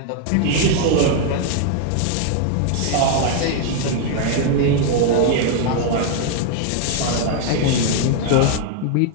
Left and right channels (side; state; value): both; different; correlation 0.00